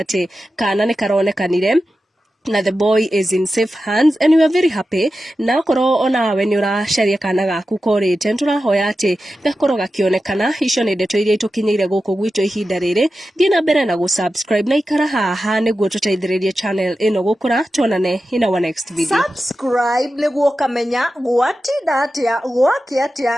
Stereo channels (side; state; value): both; normal; correlation 0.92